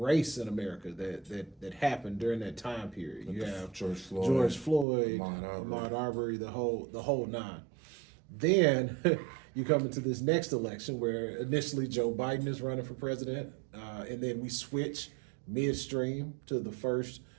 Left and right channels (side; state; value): left; drops out; at 4.9 s